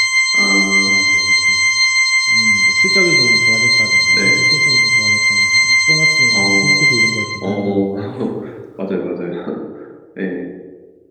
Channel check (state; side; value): identical; both; correlation 1.00